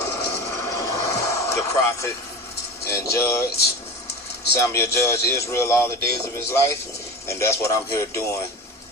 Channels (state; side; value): normal; both; correlation 0.29